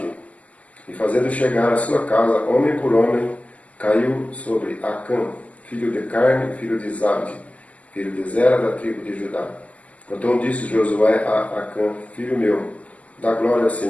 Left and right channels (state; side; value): late; right; 0.071 ms